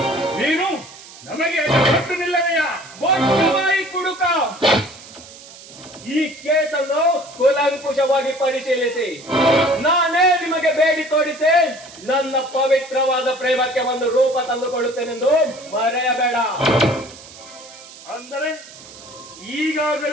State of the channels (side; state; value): right; noise; hiss, 18 dB below the sound